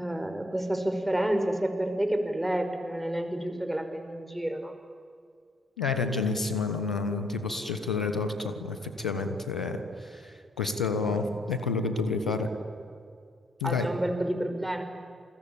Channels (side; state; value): both; normal; correlation 0.67